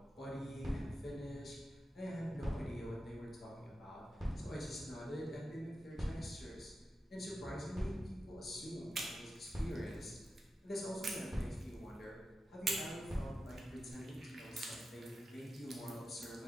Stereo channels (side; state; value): both; normal; correlation 0.91